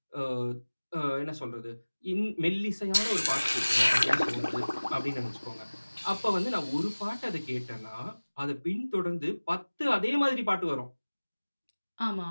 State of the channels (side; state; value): both; inverted; correlation -1.00